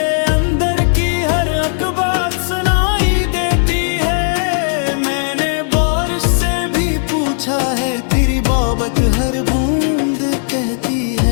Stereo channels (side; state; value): right; silent; digital silence